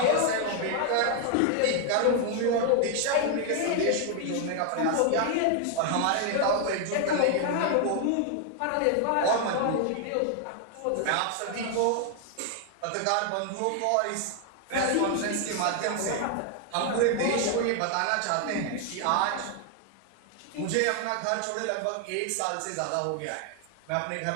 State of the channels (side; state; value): both; different; correlation 0.00